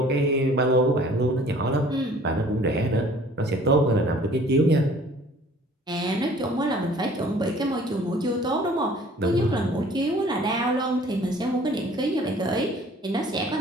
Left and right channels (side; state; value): both; normal; correlation 0.52